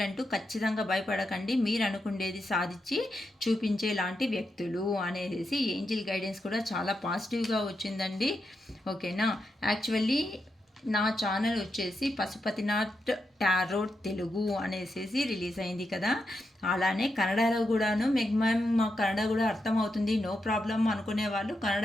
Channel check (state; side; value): normal; both; correlation 0.85